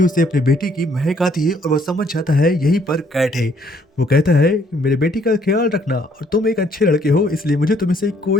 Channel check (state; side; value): normal; both; correlation 0.65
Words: उसे अपनी बेटी की महक आती है और वह समझ जाता है यहीं पर कैट है। वो कहता है कि मेरे बेटी का ख्याल रखना और तुम एक अच्छे लड़के हो इसलिए मुझे तुम से